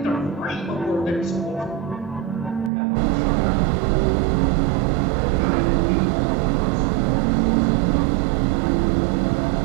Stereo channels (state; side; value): drops out; left; at 2.7 s